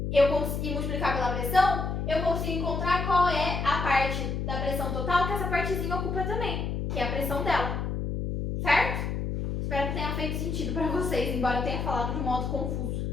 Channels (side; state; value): left; noise; hum, 2 dB below the sound